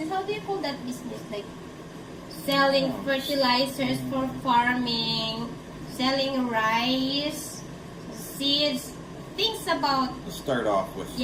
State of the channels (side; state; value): both; identical; correlation 1.00